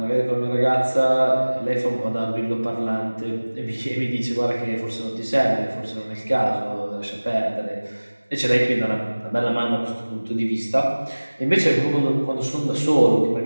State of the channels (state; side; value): inverted; both; correlation -1.00